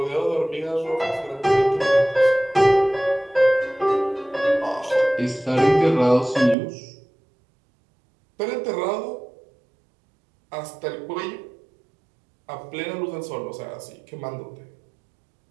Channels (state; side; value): drops out; left; at 6.6 s